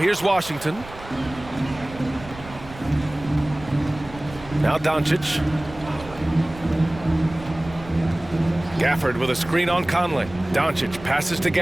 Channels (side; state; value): right; noise; rumble, 17 dB below the sound